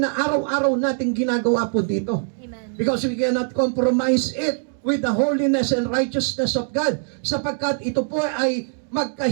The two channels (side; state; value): left; silent; digital silence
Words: araw-araw nating ginagawa po dito. Amen. Because we cannot compromise it with the holiness and righteousness of God, sapagkat ito po ay